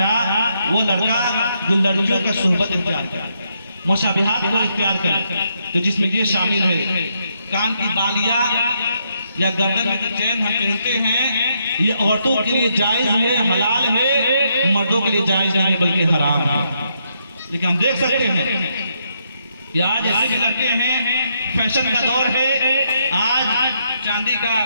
वो लड़का जो लड़कियों का सुहबत इख्तियार करे, मुशाबिहात को इख्तियार करे, तो जिसमें ये शामिल है कान की बालियां या गर्दन में चैन हम पहनते हैं, ये औरतों के लिए जायज है, हलाल है, मर्दों के लिए जायज नहीं बल्कि हराम है। लेकिन हम देख सकते हैं कि आज ऐसे भी लड़के हैं, फैशन का दौर है, आज चांदी का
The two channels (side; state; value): both; inverted; correlation -0.77